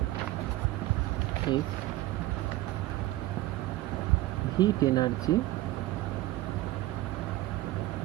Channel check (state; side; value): quieter; left; 17.0 dB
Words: is heat energy